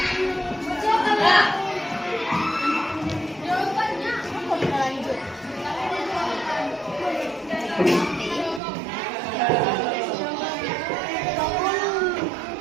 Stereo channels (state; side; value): drops out; left; at 8.6 s